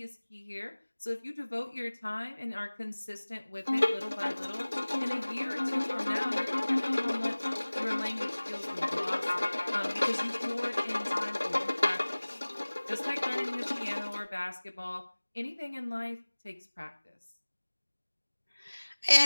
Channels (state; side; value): inverted; both; correlation -1.00